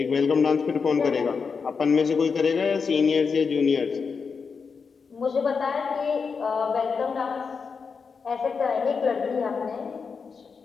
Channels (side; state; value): right; quieter; 5.4 dB